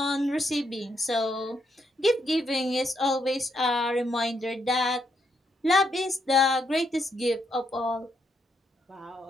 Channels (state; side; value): normal; both; correlation 0.77